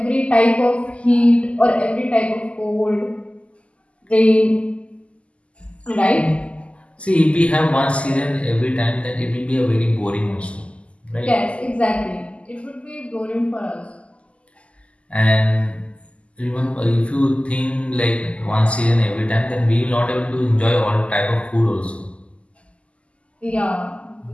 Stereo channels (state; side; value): late; right; 0.059 ms